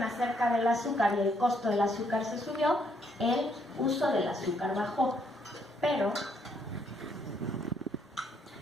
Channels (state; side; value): normal; both; correlation 0.71